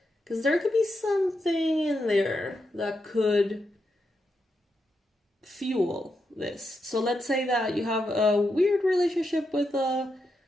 Because there could be something in there that could fuel this. So let's say that you have a weird relationship with a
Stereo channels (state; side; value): normal; both; correlation 0.84